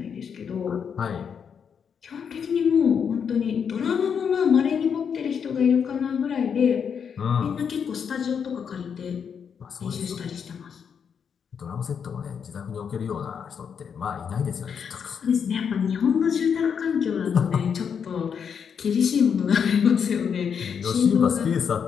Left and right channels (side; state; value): right; quieter; 7.1 dB